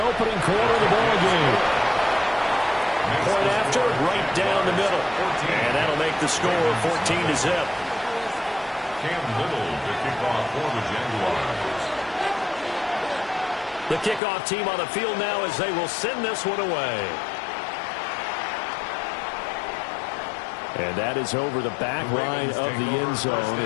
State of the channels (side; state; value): right; drops out; at 14.2 s